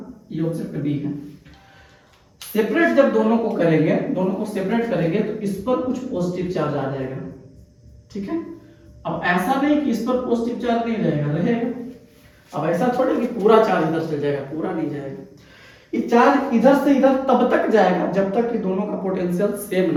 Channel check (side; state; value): both; identical; correlation 1.00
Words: ये ऑब्जेक्ट बी है, सेपरेट जब दोनों को करेंगे, दोनों को सेपरेट करेंगे तो इस पर कुछ पॉजिटिव चार्ज आ जाएगा, ठीक है। अब ऐसा नहीं कि इस पर पॉजिटिव चार्ज नहीं रहेगा, रहेगा। अब ऐसा थोड़ी कि पूरा चार्ज इधर से जाएगा, पूरा नहीं जाएगा। ये चार्ज इधर से इधर तब तक जाएगा जब तक कि दोनों का पोटेंशियल सेम